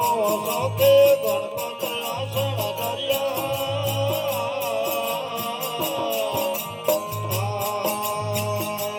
सौते गणपत आसन दरिया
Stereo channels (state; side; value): identical; both; correlation 1.00